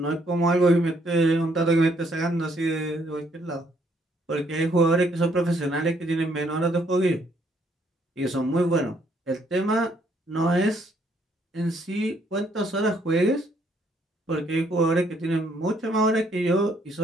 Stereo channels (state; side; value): normal; both; correlation 0.68